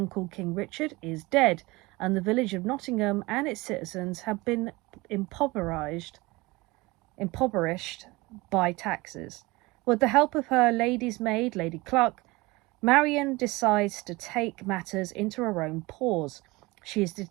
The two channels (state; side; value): quieter; left; 22.5 dB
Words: King Richard is dead, and the village of Nottingham and its citizens have been impoverished by taxes. With the help of her lady's maid, Lady Cluck, Marian decides to take matters into her own paws. She is